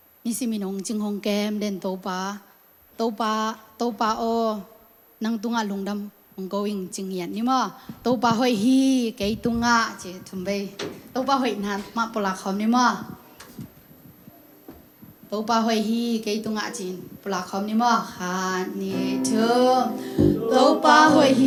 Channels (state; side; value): identical; both; correlation 1.00